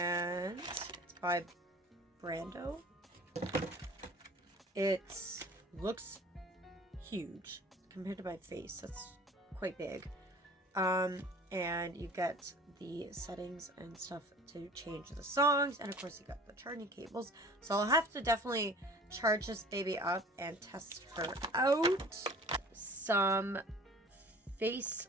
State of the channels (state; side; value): normal; both; correlation 0.45